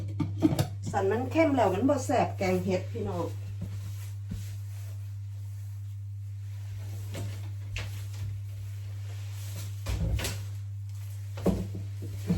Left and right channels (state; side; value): identical; both; correlation 1.00